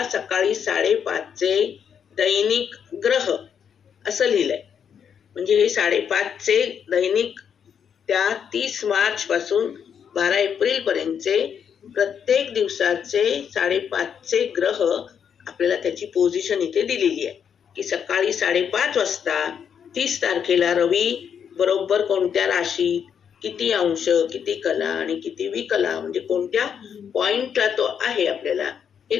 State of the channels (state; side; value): quieter; right; 7.7 dB